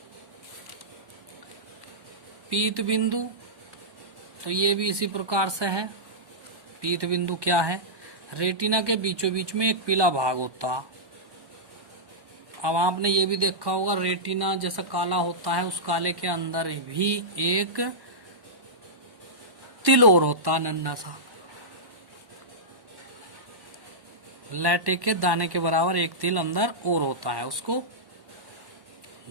पीत बिंदु, तो ये भी इसी प्रकार से है। पीत बिंदु क्या है, रेटिना के बीचों बीच में एक पीला भाग होता। अब आपने ये भी देखा होगा रेटिना जैसा काला होता है, उस काले के अंदर भी एक तिल और होता, नन्हा सा लैटे के दाने के बराबर एक तिल अंदर और होता है, उसको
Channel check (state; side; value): late; left; 1.1 ms